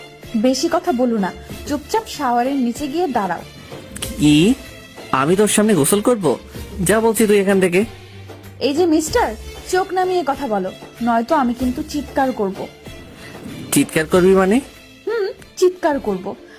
বেশি কথা বলো না, চুপচাপ শাওয়ারের নিচে গিয়ে দাঁড়াও। কি? আমি তোর সামনে গোসল করব? যা বলছি তুই এখান থেকে। এই যে মিস্টার, চোখ নামিয়ে কথা বলো, নয়তো আমি কিন্তু চিৎকার করব। চিৎকার করবি মানে? চিৎকার করব,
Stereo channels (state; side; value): identical; both; correlation 1.00